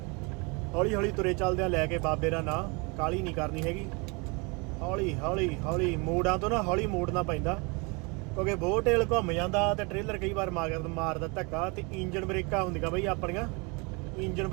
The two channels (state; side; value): quieter; left; 29.9 dB